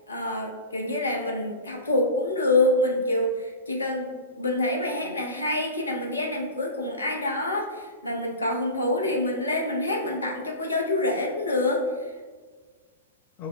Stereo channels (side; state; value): both; inverted; correlation -0.32